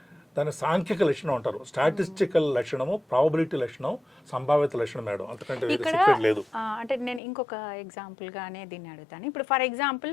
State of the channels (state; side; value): drops out; right; at 7.2 s